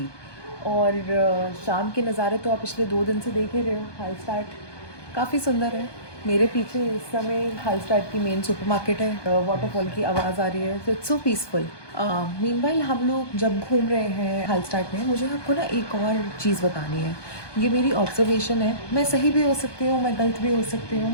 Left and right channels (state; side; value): late; right; 1.2 ms